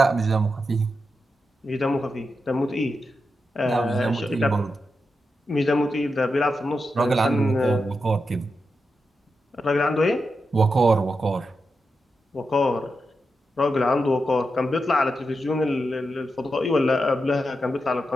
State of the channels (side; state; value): both; normal; correlation 0.88